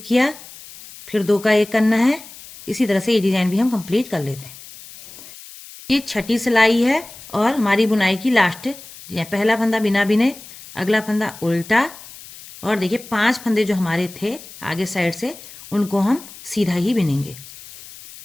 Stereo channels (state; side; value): noise; left; hiss, 17 dB below the sound